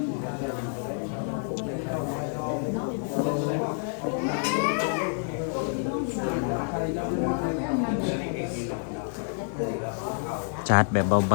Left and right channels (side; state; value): right; silent; 58 dB below the other